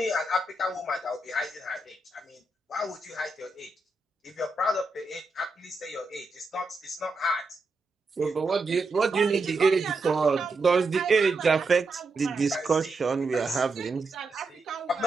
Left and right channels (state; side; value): quieter; left; 3.1 dB